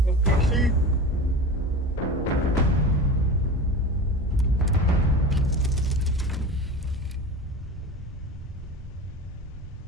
On the PC.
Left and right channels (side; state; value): both; normal; correlation 0.32